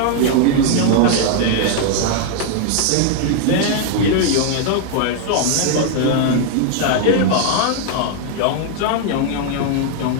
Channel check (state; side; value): different; both; correlation 0.00